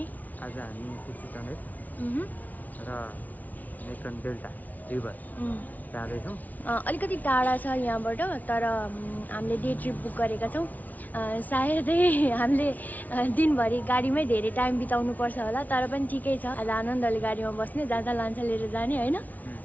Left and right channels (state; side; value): late; right; 0.076 ms